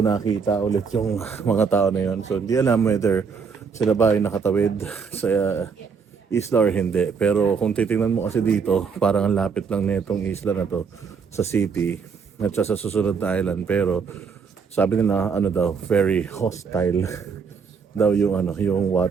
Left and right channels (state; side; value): quieter; left; 5.7 dB